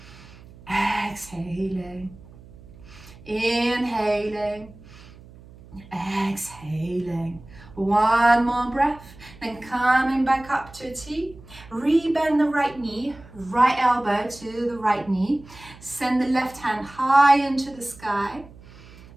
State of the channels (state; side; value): noise; right; hum, 21 dB below the sound